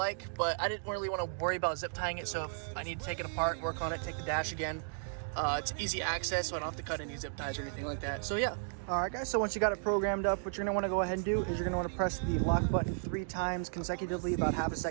but I didn't really want to worry about zip tying it. So if I need to take it apart, work on it, take the dash again, it's easy access, so I don't have to cut any zip ties or anything like that. So yeah. All right, guys, so once you got it programmed up, what you're gonna wanna go ahead and do is you're gonna wanna press the lock button 3 times consecutively, about half a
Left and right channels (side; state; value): left; silent; digital silence